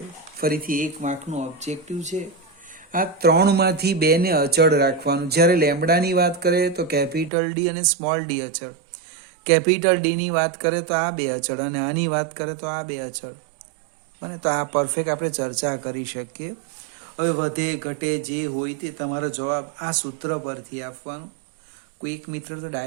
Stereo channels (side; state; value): left; drops out; at 7.3 s